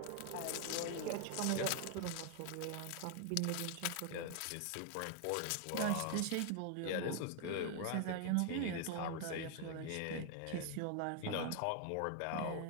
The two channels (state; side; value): different; both; correlation 0.00